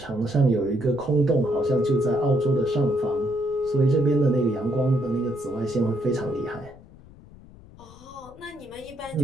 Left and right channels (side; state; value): left; noise; rumble, 21 dB below the sound